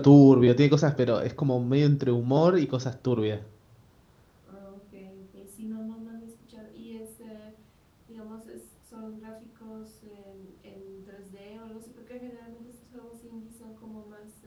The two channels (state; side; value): identical; both; correlation 1.00